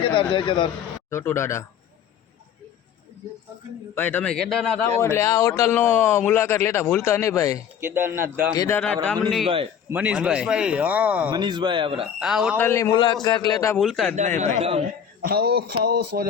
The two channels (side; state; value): right; quieter; 8.3 dB